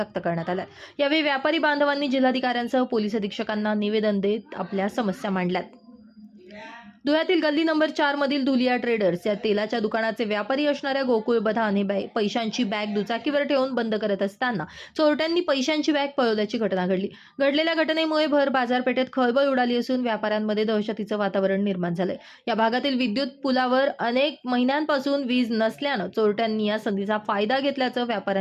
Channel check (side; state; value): both; identical; correlation 1.00